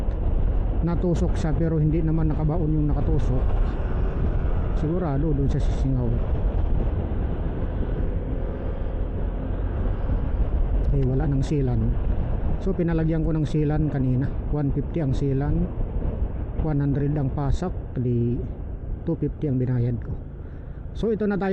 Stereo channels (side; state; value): both; identical; correlation 1.00